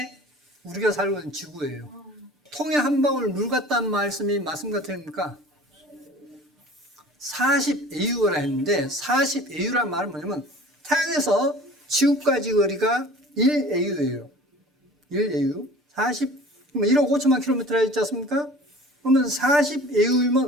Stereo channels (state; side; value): normal; both; correlation 0.44